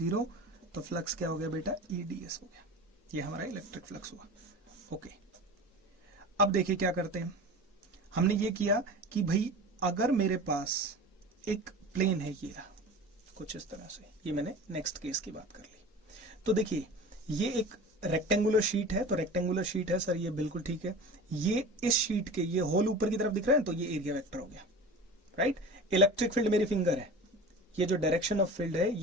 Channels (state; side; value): normal; both; correlation 0.35